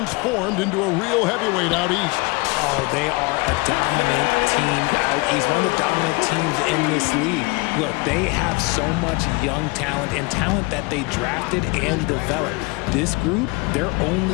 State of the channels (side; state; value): right; quieter; 26.4 dB